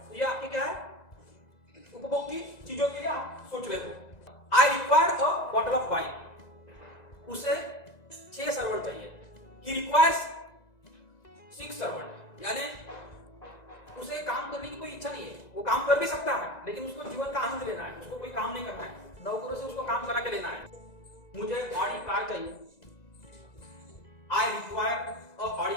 तो ये आपके क्या है? उपभोग की चीजों के लिए आप सोच रहे हो। आई require a bottle of wine, उसे 6 सर्वेंट चाहिए। ही रिक्वायर्स 6 सर्वेंट, यानी उसे काम करने की कोई इच्छा नहीं है, वो काम कर भी सकता है, लेकिन उसको जीवन का आनंद लेना है, उसको कोई काम नहीं करना है, नौकरों से उसको काम करा के लेना है। मुझे बड़ी कार चाहिए, आई रिक्वायर अ बड़ी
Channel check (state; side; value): late; right; 2.0 ms